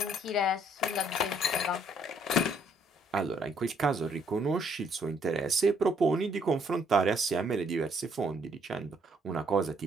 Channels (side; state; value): both; normal; correlation 0.67